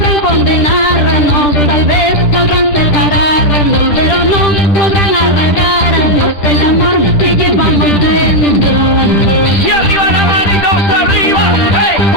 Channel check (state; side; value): late; right; 10 ms